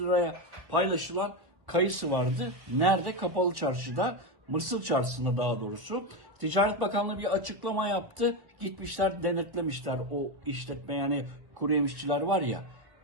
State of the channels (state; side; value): late; left; 1.1 ms